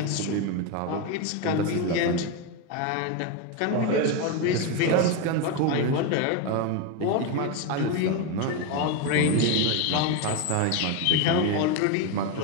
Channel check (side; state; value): both; different; correlation 0.03